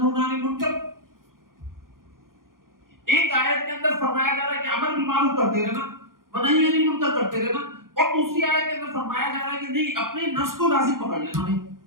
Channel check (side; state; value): left; late; 0.91 ms